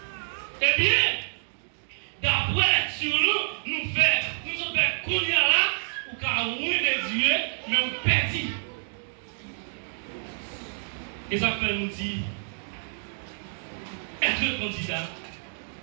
Eh bien, d'après sur nous, nous faisons qu'on y a là, ou qu'à de Dieu, mais on perdit. Et ça fait nous dire, être candidat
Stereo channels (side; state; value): left; silent; digital silence